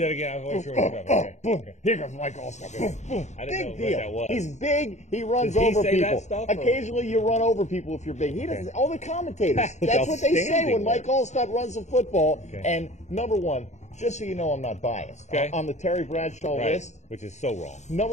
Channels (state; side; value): late; right; 0.34 ms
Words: again. I wasn't sure what you're boom. Here comes Mike Allstott. Boom, boom. I didn't know big deal. What that was. He's big. He runs Does he over say people. That stuff, occasionally, you run over people if you're big. He doesn't. All the commentators. That's what they say when Mike Allstott runs the football. And number 1. Just so you know, I'm not biased. On the Terry Bradshaw list, which is so wrong.